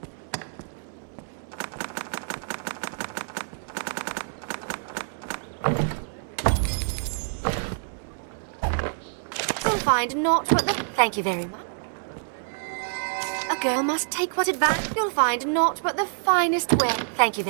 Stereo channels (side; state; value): left; silent; digital silence